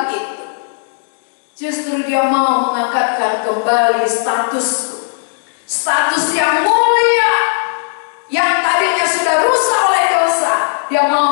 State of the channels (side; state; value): right; silent; digital silence